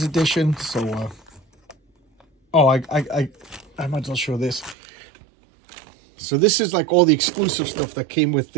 Edition. So, I might as well show this. So this is like all the exclusive stuff that came with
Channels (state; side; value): drops out; left; at 4.8 s